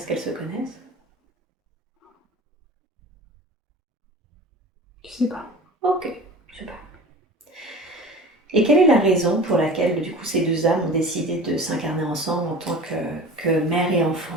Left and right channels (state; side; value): normal; both; correlation 0.38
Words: qu'elles se connaissent? Je sais pas. Ok. Super. Et quelle est la raison pour laquelle, du coup, ces deux âmes ont décidé de s'incarner ensemble en tant que mère et